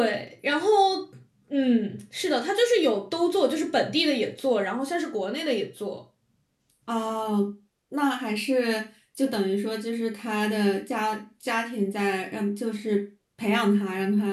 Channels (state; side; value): identical; both; correlation 1.00